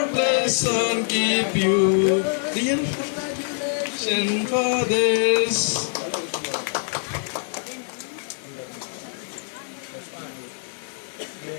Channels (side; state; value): right; silent; 62 dB below the other